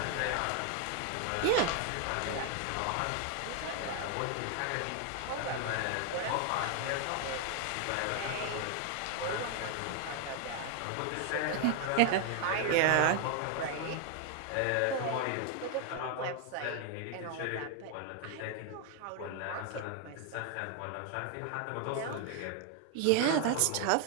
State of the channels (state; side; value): different; both; correlation 0.01